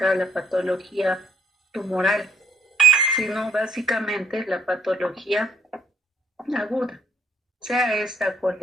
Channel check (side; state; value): both; normal; correlation 0.68